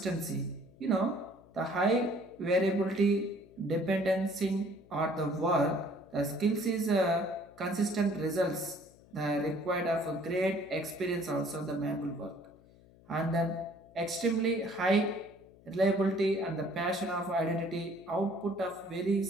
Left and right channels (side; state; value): left; noise; hum, 25 dB below the sound